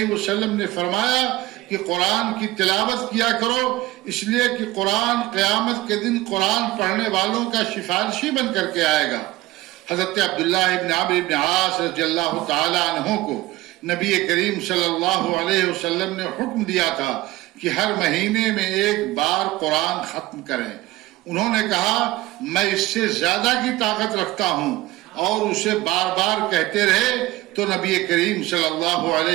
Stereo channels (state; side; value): quieter; left; 18.1 dB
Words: وسلم نے فرمایا کہ قرآن کی تلاوت کیا کرو، اس لیے کہ قرآن قیامت کے دن قرآن پڑھنے والوں کا سفارشی بن کر کے آئے گا۔ حضرت عبداللہ ابن عمرو بن عاص رضی اللہ تعالی عنہ کو نبی کریم صلی اللہ علیہ وسلم نے حکم دیا تھا کہ ہر مہینے میں ایک بار قرآن ختم کریں۔ انہوں نے کہا میں اس سے زیادہ کی طاقت رکھتا ہوں، اور اسے بار بار کہتے رہے تو نبی کریم صلی اللہ